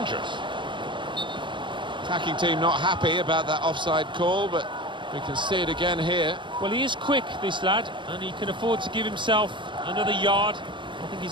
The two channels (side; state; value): left; late; 0.23 ms